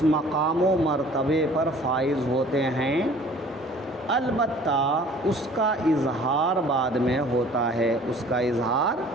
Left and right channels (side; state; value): both; normal; correlation 0.51